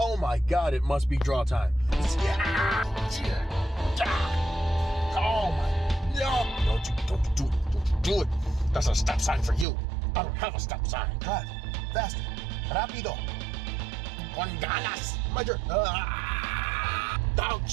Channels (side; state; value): left; drops out; at 9.7 s